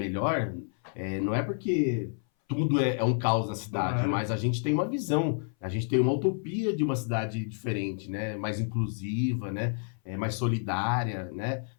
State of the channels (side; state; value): right; silent; 58 dB below the other